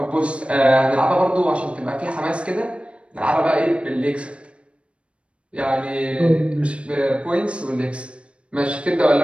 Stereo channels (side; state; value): left; late; 0.059 ms